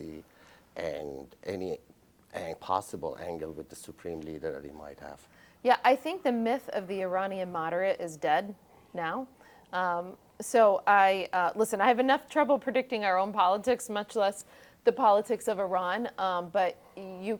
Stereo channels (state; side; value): identical; both; correlation 1.00